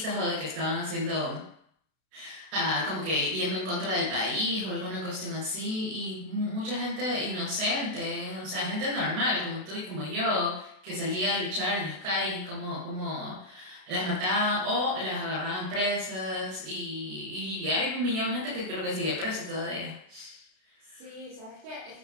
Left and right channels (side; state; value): left; late; 32 ms